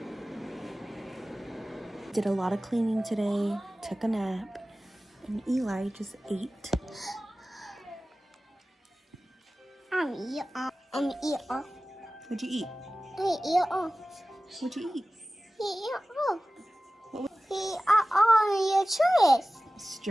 Did a lot of cleaning today, took a nap, and Eli just ate. I'm eat all. What'd you eat? I eat all. What'd you eat? He eat all. He eat all your choice.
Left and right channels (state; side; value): normal; both; correlation 0.96